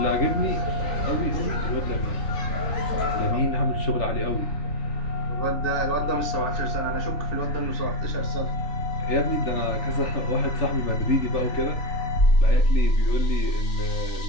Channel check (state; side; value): late; right; 3.4 ms